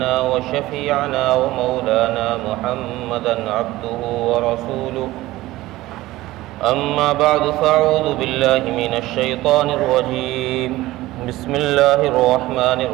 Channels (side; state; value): left; quieter; 17.4 dB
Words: وشفيعنا ومولانا محمدا عبده ورسوله أما بعد فأعوذ بالله من الشيطان الرجيم بسم الله الرحمن